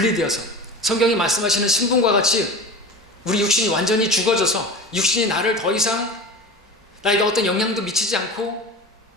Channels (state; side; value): normal; both; correlation 0.32